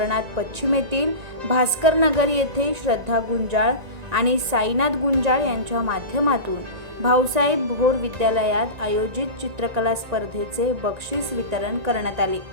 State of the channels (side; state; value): left; late; 1.8 ms